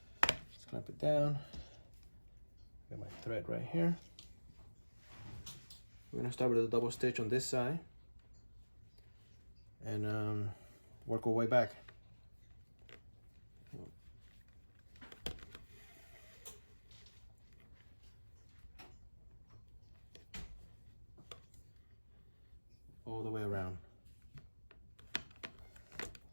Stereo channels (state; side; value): inverted; both; correlation -1.00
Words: Let's clamp it down. Got my thread right here. We're gonna start with a double stitch on this side and work our way back. All the way around.